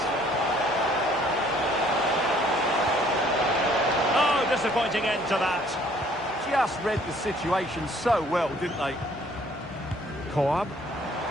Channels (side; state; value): both; normal; correlation 0.60